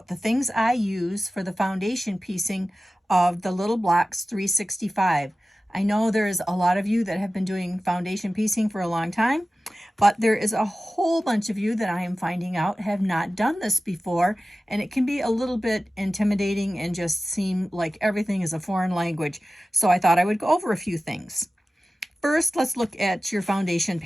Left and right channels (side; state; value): both; normal; correlation 0.94